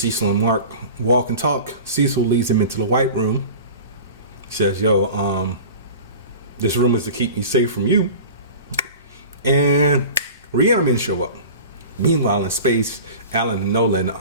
and Mark walk and talk. Cecil leads him into the White Room. Says, yo, this room is to keep me safe from you. And Reanimen show up. Meanwhile, in space, Alan and Nolan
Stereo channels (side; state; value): both; inverted; correlation -0.37